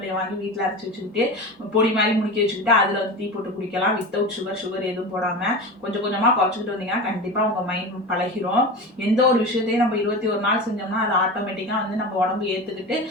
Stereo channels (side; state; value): both; normal; correlation 0.28